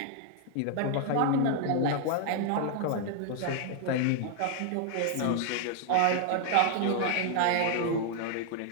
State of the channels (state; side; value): different; both; correlation 0.00